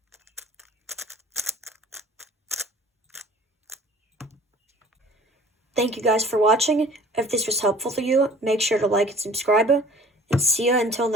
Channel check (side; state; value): both; normal; correlation 0.48